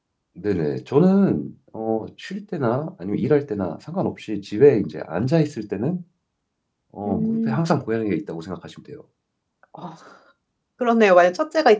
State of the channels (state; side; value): identical; both; correlation 1.00